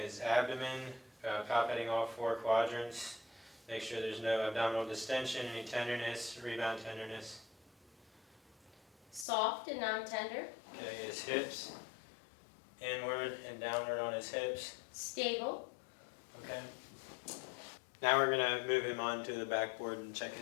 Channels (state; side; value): drops out; right; at 9.2 s